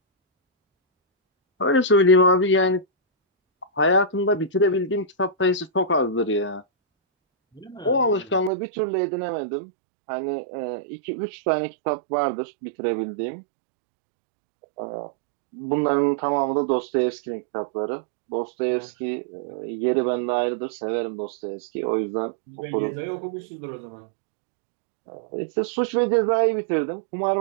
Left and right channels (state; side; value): drops out; left; at 8.5 s